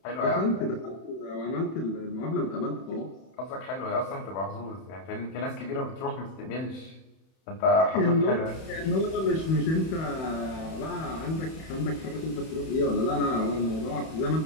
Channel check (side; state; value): right; late; 31 ms